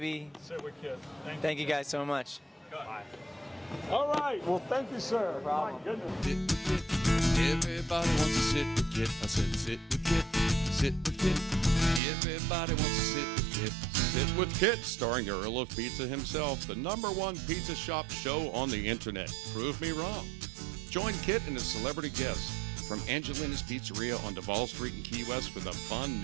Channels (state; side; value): drops out; left; at 12.0 s